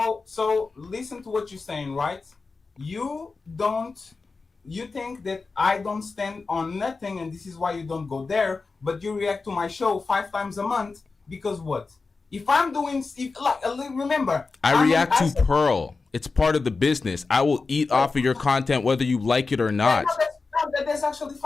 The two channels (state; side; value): quieter; right; 4.2 dB